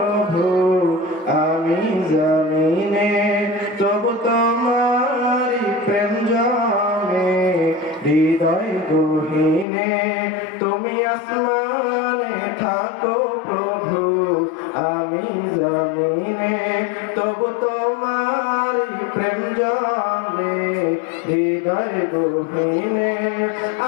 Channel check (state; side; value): drops out; right; at 9.7 s